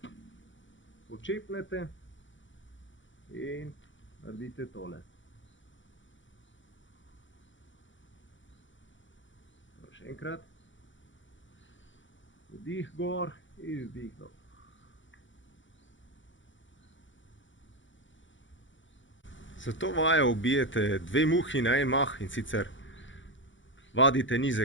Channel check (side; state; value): right; late; 0.55 ms